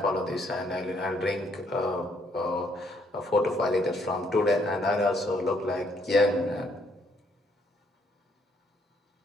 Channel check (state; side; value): normal; both; correlation 0.70